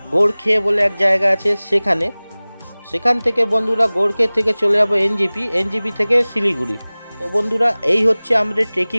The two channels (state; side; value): inverted; both; correlation -1.00